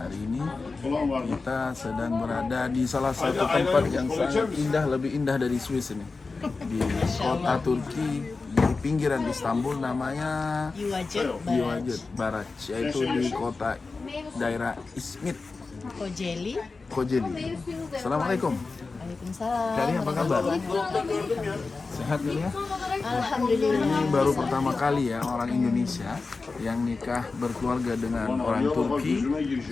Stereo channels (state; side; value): quieter; right; 4.0 dB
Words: hari ini kita sedang berada di salah satu tempat yang sangat indah, lebih indah dari Swiss ini, di kota Turki di pinggiran Istanbul, namanya Yuvacık Baraj, yaitu di kota daerah Izmit, Kocaeli. Assalamualaikum. Waalaikumsalam. Kari apa kabar? Sehat ya? Alhamdulillah. Ini baru pertama kali ya orang Indonesia yang nikah berkeluarga dengan orang Turki,